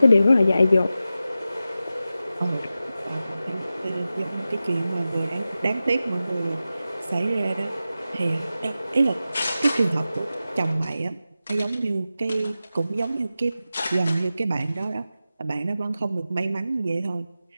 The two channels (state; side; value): inverted; both; correlation -0.93